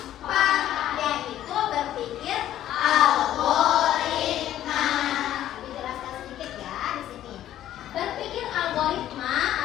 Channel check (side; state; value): right; quieter; 12.3 dB